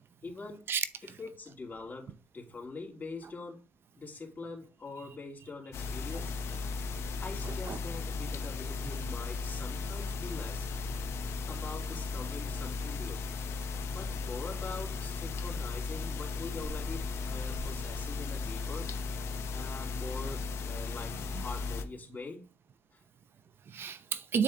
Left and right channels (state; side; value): normal; both; correlation 0.67